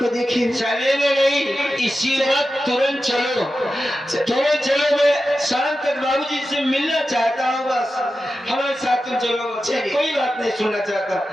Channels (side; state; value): both; normal; correlation 0.92